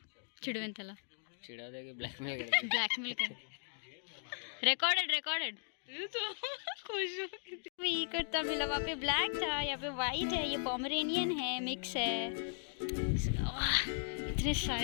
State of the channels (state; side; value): silent; right; digital silence